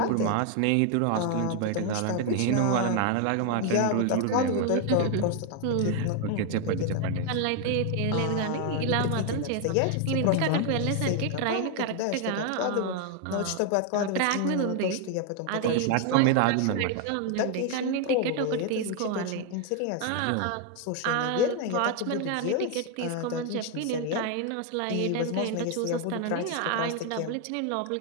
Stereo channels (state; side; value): different; both; correlation 0.01